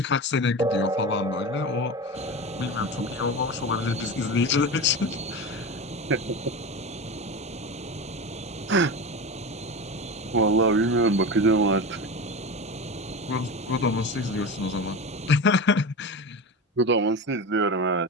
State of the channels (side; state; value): both; normal; correlation 0.25